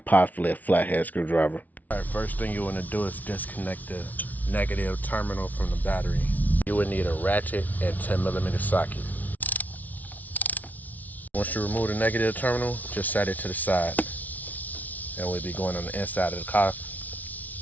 possibly a flathead screwdriver. Alright, first thing you want to do is disconnect the negative terminal from the battery. You would need a ratchet and 10mm socket. Once you remove the negative terminal, just set it to the side. And we'll be going on the inside of the car,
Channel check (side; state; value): right; late; 0.076 ms